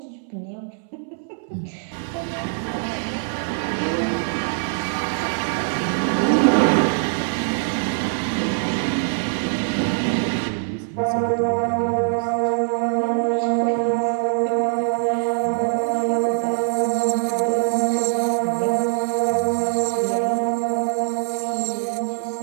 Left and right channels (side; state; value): left; silent; 62 dB below the other